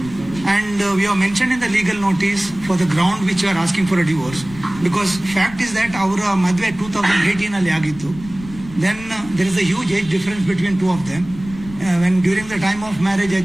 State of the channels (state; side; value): noise; left; rumble, 16 dB below the sound